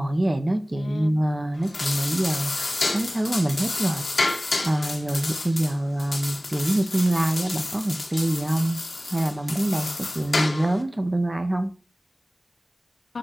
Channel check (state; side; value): normal; both; correlation 0.98